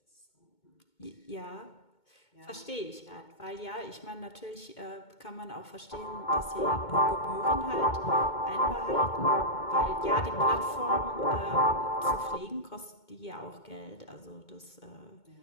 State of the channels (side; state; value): right; late; 2.2 ms